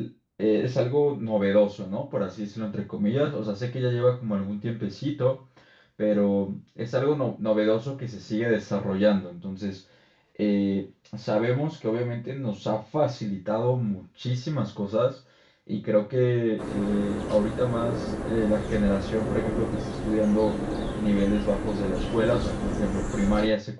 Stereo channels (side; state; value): both; identical; correlation 1.00